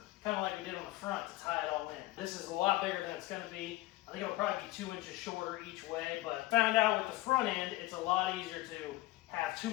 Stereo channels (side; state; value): right; quieter; 18.1 dB